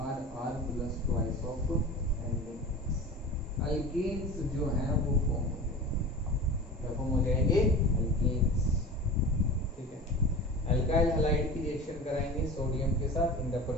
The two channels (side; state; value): both; normal; correlation 0.34